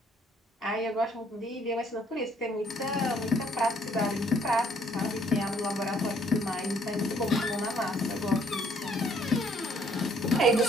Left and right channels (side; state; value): both; normal; correlation 0.65